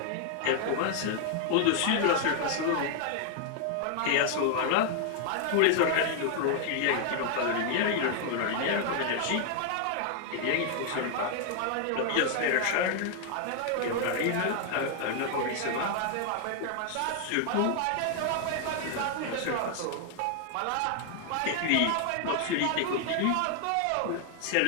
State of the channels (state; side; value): different; both; correlation 0.00